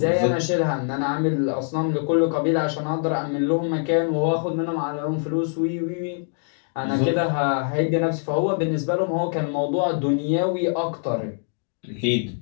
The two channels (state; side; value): silent; right; 63 dB below the other